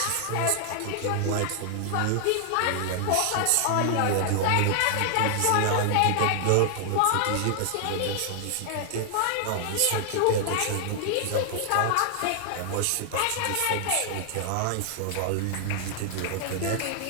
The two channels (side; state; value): both; different; correlation 0.00